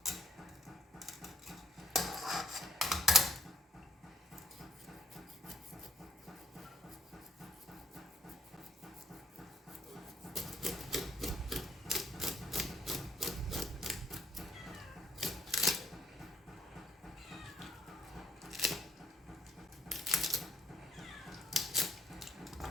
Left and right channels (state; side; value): normal; both; correlation 0.65